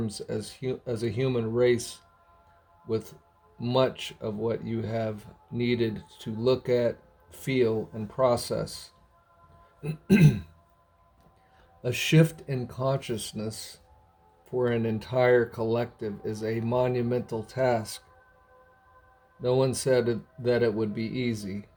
as a human race with much of what you have needed to look at, feel, and process. A shift in consciousness for an entire collective is a monumental task. No one said that it would be easy,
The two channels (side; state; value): both; identical; correlation 1.00